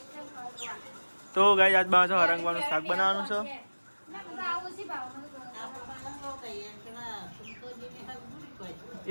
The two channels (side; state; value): both; inverted; correlation -1.00